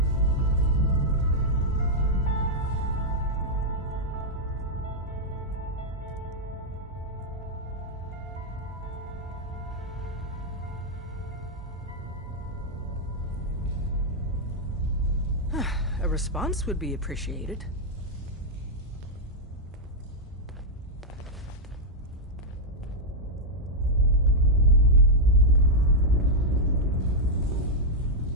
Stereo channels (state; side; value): normal; both; correlation -0.04